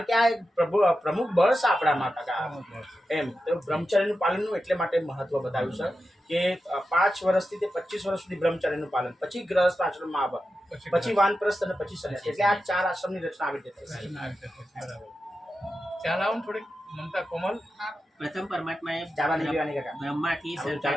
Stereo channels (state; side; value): normal; both; correlation 0.91